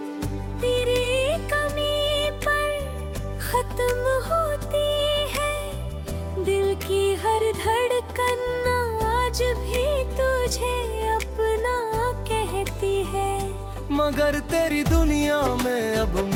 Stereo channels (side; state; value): both; identical; correlation 1.00